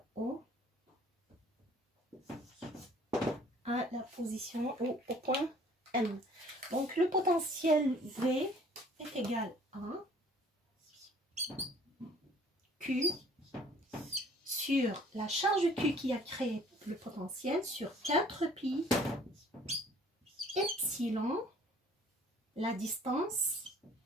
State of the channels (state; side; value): normal; both; correlation 0.55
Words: à la position ou au point M. Donc le potentiel V est égal à Q sur la charge Q qui a créé le potentiel sur 4 pi epsilon, la distance